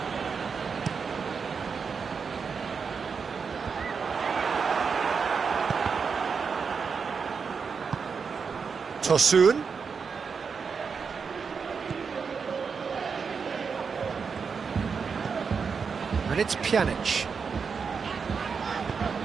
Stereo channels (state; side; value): quieter; left; 5.7 dB